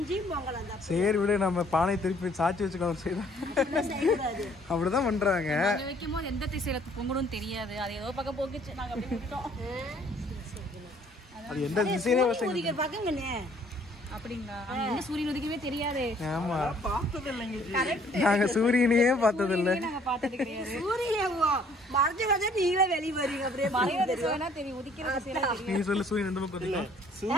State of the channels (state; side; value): normal; both; correlation 0.60